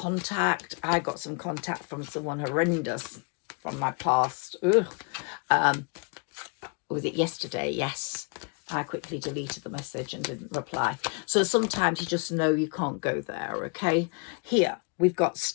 I got some contact from someone horrendous from my past. Was it yesterday? Yes. I quickly deleted the message and didn't reply. So sometimes you just know you can't go there, okay? Here, we've got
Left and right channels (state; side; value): quieter; right; 35.8 dB